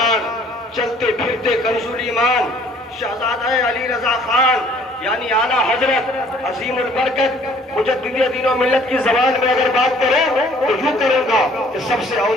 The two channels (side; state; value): both; normal; correlation 0.57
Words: چلتے پھرتے کنزول ایمان, شہزادہ علی رضا خان یعنی اعلیٰ حضرت عظیم البرکت مجدد دین و ملت کی زبان میں اگر بات کریں تو یوں کروں گا کہ سب سے